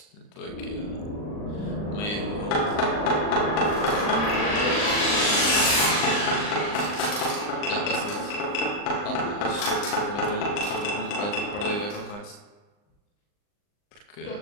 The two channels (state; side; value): late; right; 39 ms